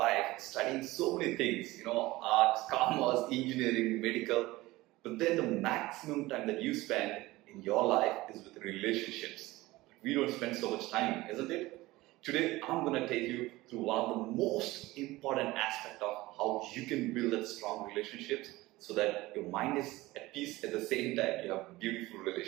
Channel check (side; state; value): left; quieter; 19.1 dB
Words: studying so many things, arts, commerce, engineering, medical, but then the maximum time that you spend in your life is with relationships. We don't spend so much time, isn't it? Today, I'm going to take you through one of the most important aspects of how you can build that strong relationships so that your mind is at peace at the same time you have beautiful